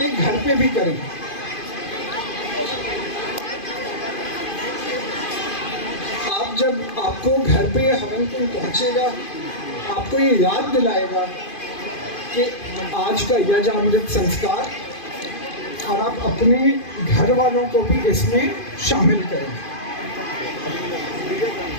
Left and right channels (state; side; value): late; right; 2.5 ms